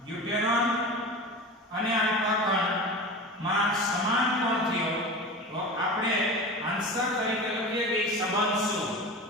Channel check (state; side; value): normal; both; correlation 0.31